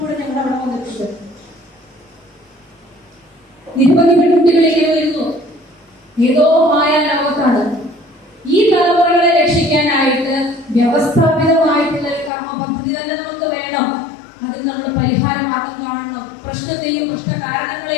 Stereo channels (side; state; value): right; drops out; at 12.3 s